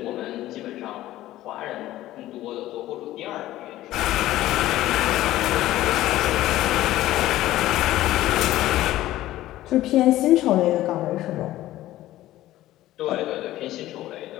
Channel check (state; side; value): quieter; right; 15.1 dB